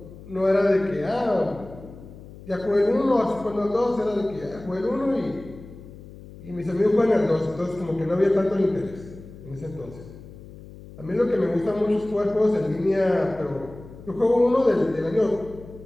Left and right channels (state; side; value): noise; left; hum, 17 dB below the sound